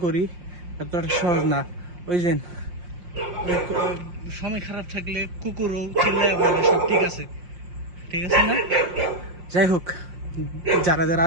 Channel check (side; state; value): left; late; 5.6 ms